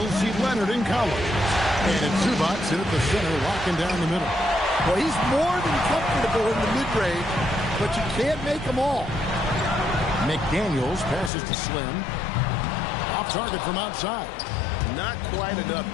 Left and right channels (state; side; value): drops out; right; at 11.3 s